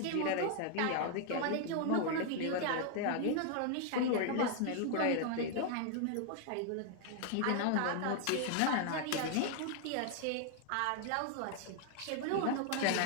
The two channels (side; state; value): both; different; correlation 0.00